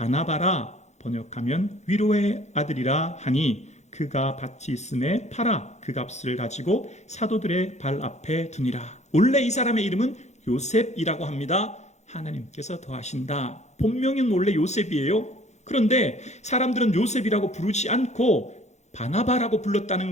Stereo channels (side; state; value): right; late; 0.33 ms